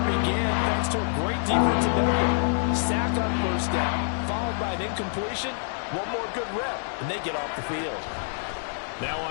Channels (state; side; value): silent; right; digital silence